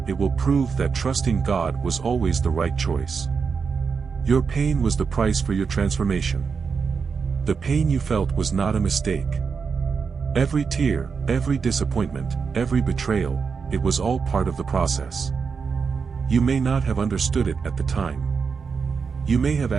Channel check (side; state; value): left; quieter; 5.6 dB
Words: it will prove that trusting God was always the right choice. Your pain was the price for your transformation. The pain you felt was not a mistake. Every tear, every disappointment, every betrayal, it was all part of the process. You may not have understood it at the time. You may have